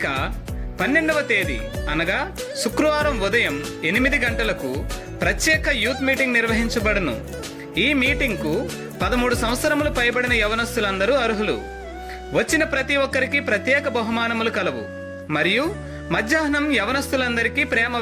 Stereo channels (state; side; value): identical; both; correlation 1.00